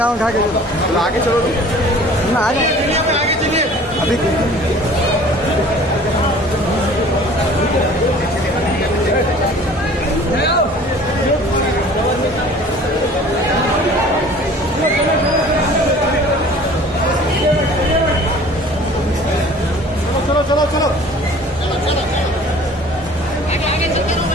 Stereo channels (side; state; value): both; normal; correlation 0.48